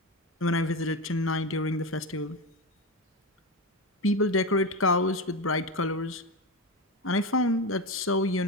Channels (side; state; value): both; normal; correlation 0.17